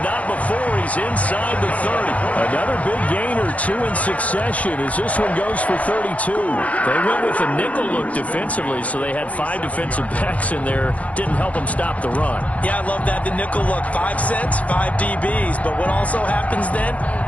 not before he's inside the 30. Another big gain or two in succession as this one goes for 32. They went with a nickel look defensively, so they had 5 defensive backs in there. Didn't help them stop the run. Yeah, I love that, the nickel look. 5 cents, 5 DBs. But what also happens then,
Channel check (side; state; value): right; late; 0.067 ms